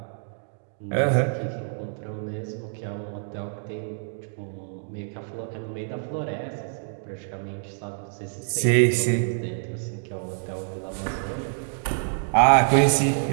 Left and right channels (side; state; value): left; silent; digital silence